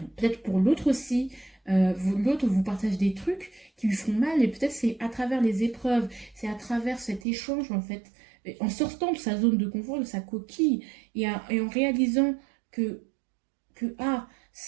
Peut-être pour l'autre aussi, l'autre vous partage des trucs qui lui font mal, et peut-être c'est à travers les épreuves, c'est à travers cet échange, en fait, en sortant de sa zone de confort, de sa coquille, et en réalisant que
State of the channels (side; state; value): left; drops out; at 7.2 s